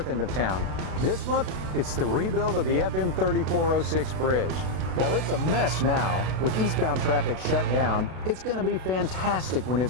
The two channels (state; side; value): late; left; 32 ms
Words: end of town. This month, it's the rebuild of the FM 3406 bridge. While it's a mess now, with eastbound traffic shut down, it's going to be fantastic when